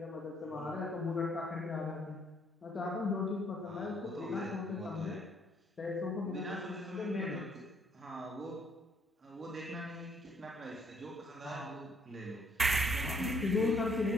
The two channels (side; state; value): both; normal; correlation 0.67